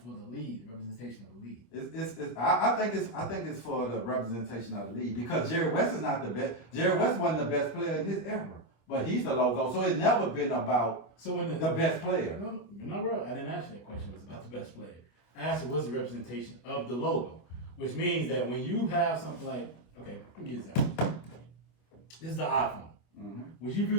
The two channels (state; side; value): late; right; 25 ms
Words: the league, the representation of the league? I think it's for the representation of the league because Jerry West is not the best. Jerry West wasn't the best player in his era, but he's the logo. So it's never been about the best player. No, you're not real. I didn't ask you that question. It was about the best player. I asked you what's the representation of the logo, which means that when you have something like, okay, let me give you this. This is the iPhone. Mm-hmm. Would you view